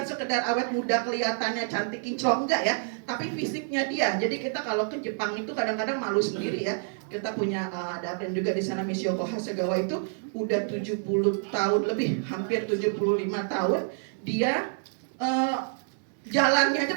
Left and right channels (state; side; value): silent; left; digital silence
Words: sekedar awet muda kelihatannya cantik kinclong, enggak ya, tapi fisiknya dia. Jadi kita kalau ke Jepang itu kadang-kadang malu sendiri ya. Kita punya ada brand juga di sana, Mishiyoko Hasegawa, itu udah 70 tahun lebih, hampir 75 tahun. Dia jalannya aja